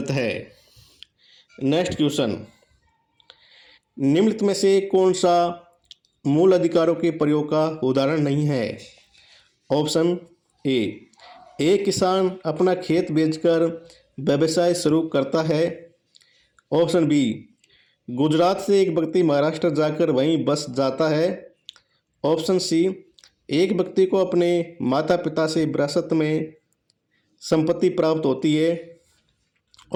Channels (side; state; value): both; identical; correlation 1.00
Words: है। नेक्स्ट क्वेश्चन, निम्नलिखित में से कौन सा मूल अधिकारों के प्रयोग का उदाहरण नहीं है? ऑप्शन ए, एक किसान अपना खेत बेचकर व्यवसाय शुरू करता है। ऑप्शन बी, गुजरात से एक व्यक्ति महाराष्ट्र जाकर वहीं बस जाता है। ऑप्शन सी, एक व्यक्ति को अपने माता पिता से विरासत में संपत्ति प्राप्त होती है।